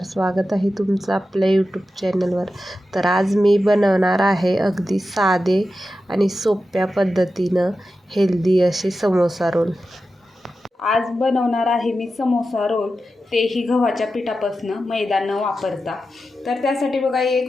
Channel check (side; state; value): both; normal; correlation 0.91